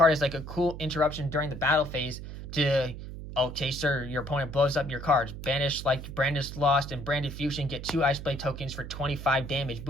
as like a cool interruption during the battle phase to, okay, sir, your opponent blows up your cards. Banish like Branded Lost and Branded Fusion, get 2 Ice Blade tokens for 25 damage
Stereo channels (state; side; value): noise; right; hum, 10 dB below the sound